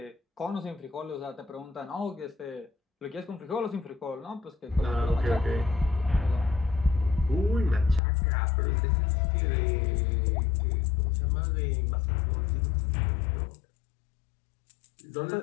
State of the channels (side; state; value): right; drops out; at 8.0 s